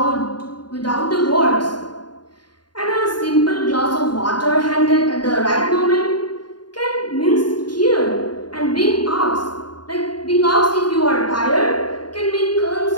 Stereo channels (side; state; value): right; late; 0.71 ms